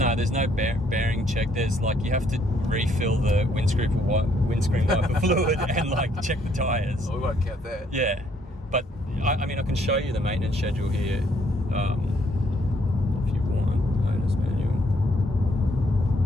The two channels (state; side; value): normal; both; correlation 0.68